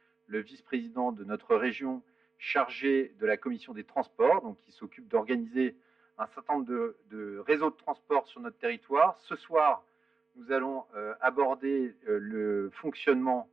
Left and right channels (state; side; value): quieter; left; 4.3 dB